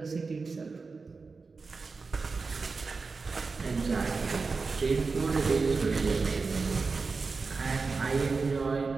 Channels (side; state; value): left; quieter; 4.4 dB